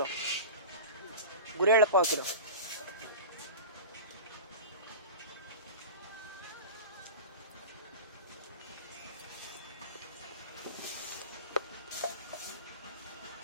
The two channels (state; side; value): inverted; both; correlation -0.31